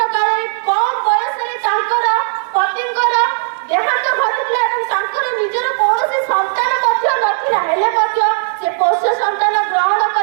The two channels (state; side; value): silent; left; 67 dB below the other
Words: କାଳରେ କମ ବୟସରେ ତାଙ୍କର ପତିଙ୍କର ଦେହାନ୍ତ ଘଟିଥିଲା ଏବଂ ତାଙ୍କର ନିଜର କୌଣସି ସନ୍ତାନ ମଧ୍ୟ ନଥିଲା। ହେଲେ ମଧ୍ୟ ସେ ପୋଷ୍ୟ ସନ୍ତାନ ଗ୍ରହଣ